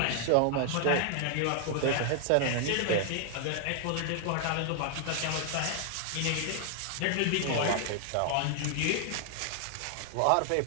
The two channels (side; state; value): both; different; correlation 0.00